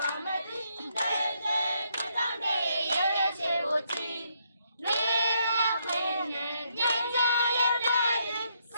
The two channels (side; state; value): both; inverted; correlation -0.75